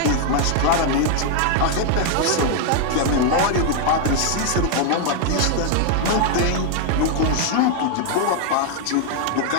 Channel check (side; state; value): both; different; correlation 0.00